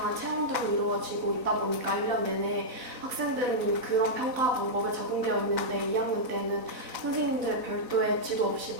체험들로 이루어지고 있다 보니까 1년 내내 학생들은 그런 평가 방법에 적응되어 있는데 2학년 때는 선생님들 별도의 지도 없이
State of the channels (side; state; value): left; late; 4.0 ms